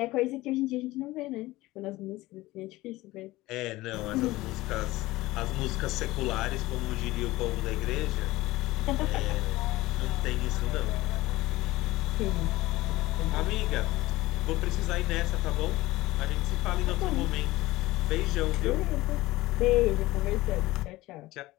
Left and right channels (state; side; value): quieter; right; 18.7 dB